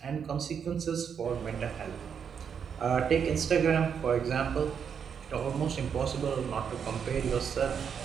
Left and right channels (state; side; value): quieter; left; 7.3 dB